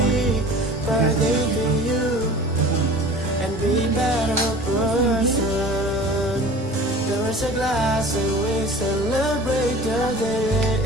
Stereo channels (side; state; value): both; normal; correlation 0.42